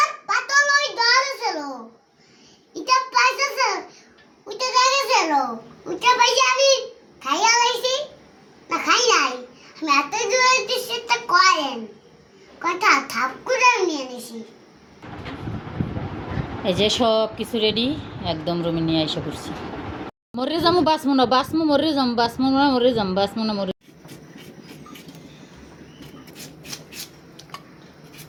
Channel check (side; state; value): both; identical; correlation 1.00